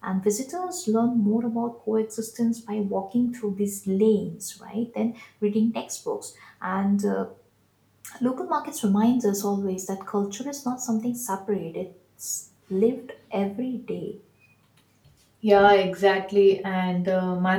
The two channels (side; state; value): both; identical; correlation 1.00